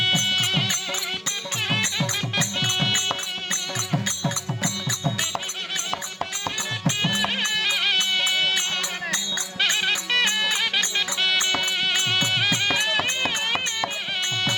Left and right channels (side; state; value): both; identical; correlation 1.00